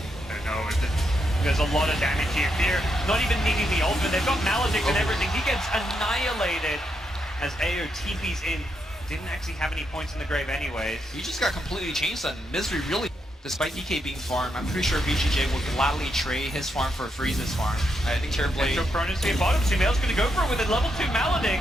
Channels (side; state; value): both; normal; correlation 0.81